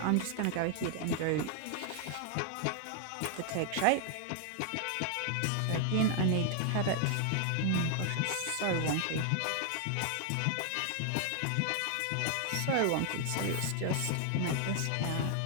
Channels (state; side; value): different; both; correlation 0.00